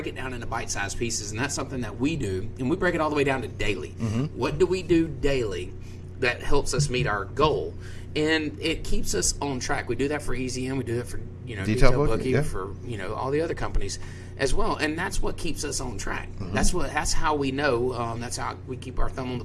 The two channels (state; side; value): identical; both; correlation 1.00